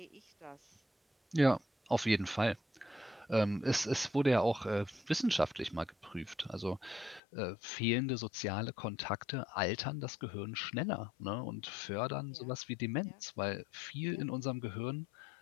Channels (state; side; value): drops out; right; at 7.2 s